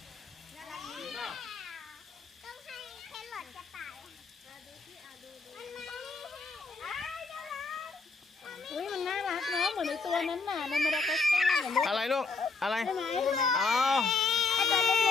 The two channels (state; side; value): quieter; right; 4.2 dB